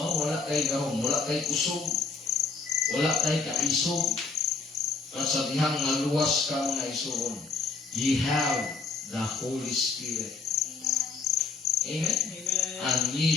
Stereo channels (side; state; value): right; quieter; 4.4 dB